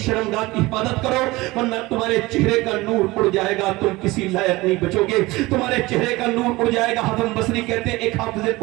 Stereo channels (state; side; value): quieter; left; 20.7 dB